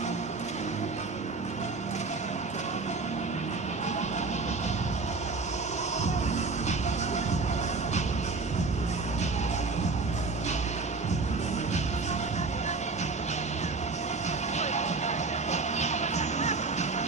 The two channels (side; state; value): left; quieter; 4.0 dB